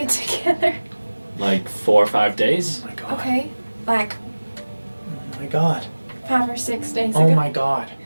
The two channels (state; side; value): inverted; both; correlation -1.00